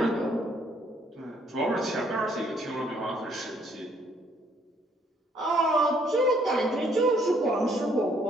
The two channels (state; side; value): normal; both; correlation 0.66